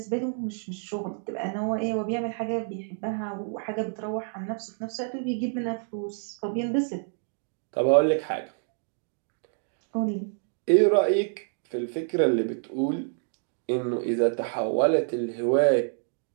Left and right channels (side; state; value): left; silent; digital silence